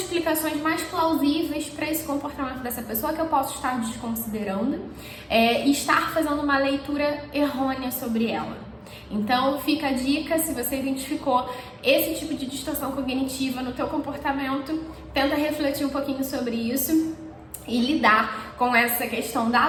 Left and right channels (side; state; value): both; identical; correlation 1.00